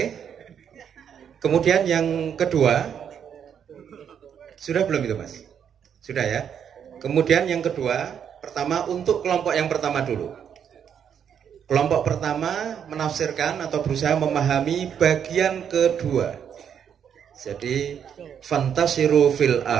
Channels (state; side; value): quieter; left; 8.2 dB